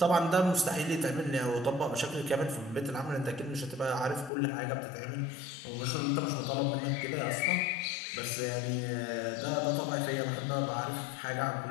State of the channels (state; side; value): drops out; right; at 4.3 s